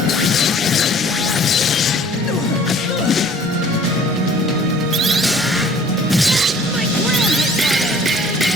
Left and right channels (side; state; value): both; normal; correlation 0.53